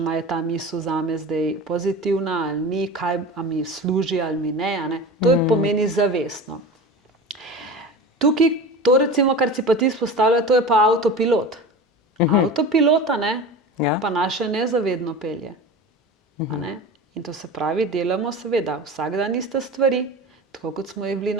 ali je ta misel zame zdaj pozitivna ali ni, ali mi služi ali mi ne. To pomeni zavestno. Tukaj, to recimo, kar si pa ti izpostavlja, to je pa avtopilot. Avtopilota, pa naše nezavedno pelje. In to se pravi, delamo seveda vsak dan iste stvari, tako kot smo jih bili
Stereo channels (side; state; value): both; normal; correlation 0.32